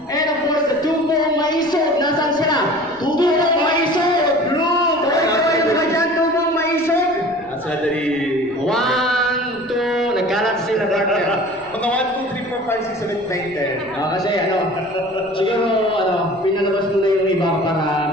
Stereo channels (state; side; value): noise; left; rumble, 28 dB below the sound